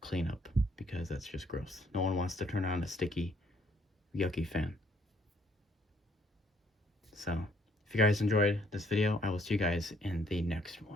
clean up, because that's just gross. No one wants to turn on a sticky, yucky fan. So, if you guys enjoyed this video, I will see you guys in the next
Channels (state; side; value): normal; both; correlation 0.66